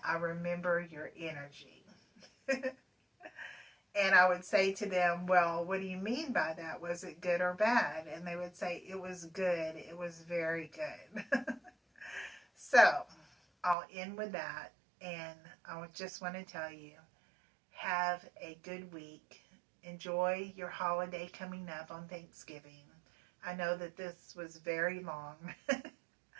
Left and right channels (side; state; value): left; drops out; at 13.8 s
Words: I remember your energy. And I would say to them, well, what do you mean by that? Was it good or bad? And they would say, it was good. It was very good. So I'll end with that. And I just want to tell you, have a good week. Enjoy your holiday coming up on Thanksgiving. I know that this was very long,